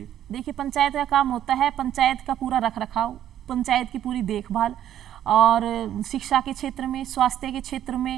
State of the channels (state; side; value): quieter; left; 11.2 dB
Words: देखिए पंचायत का काम होता है पंचायत का पूरा रख रखाव, पंचायत की पूरी देखभाल, और शिक्षा के क्षेत्र में, स्वास्थ्य के क्षेत्र